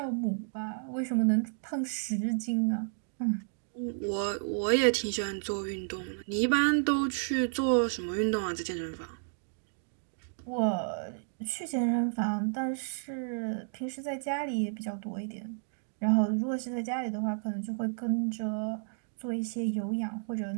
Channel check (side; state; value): left; silent; digital silence